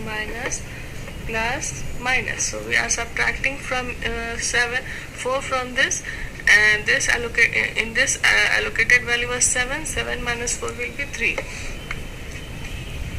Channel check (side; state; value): both; identical; correlation 1.00